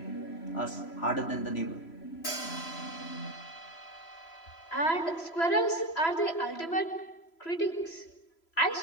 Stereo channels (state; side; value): late; right; 3.0 ms